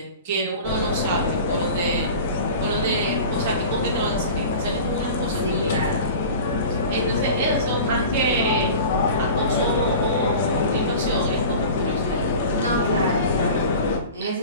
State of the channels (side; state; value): both; inverted; correlation -0.37